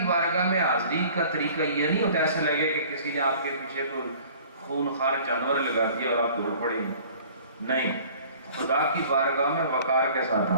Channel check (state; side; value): inverted; both; correlation -0.49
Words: بارگاہ میں حاضری کا طریقہ یہ نہیں ہوتا ایسے لگے کہ کسی نے آپ کے پیچھے کوئی خون خار جانور لگا دیا اور آپ دوڑ پڑے، نہیں، خدا کی بارگاہ میں وقار کے ساتھ